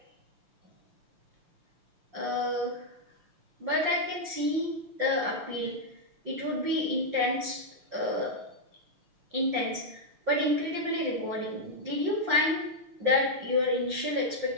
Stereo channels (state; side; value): late; left; 5.7 ms